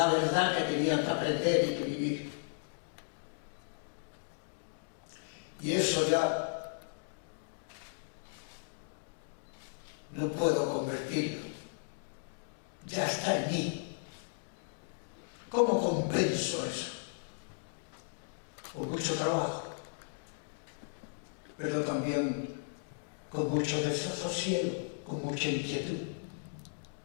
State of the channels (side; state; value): right; silent; digital silence